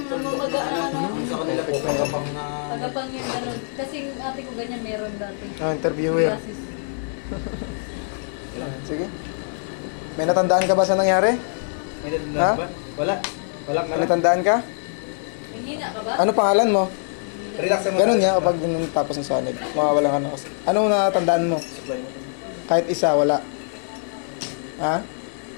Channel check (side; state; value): right; silent; digital silence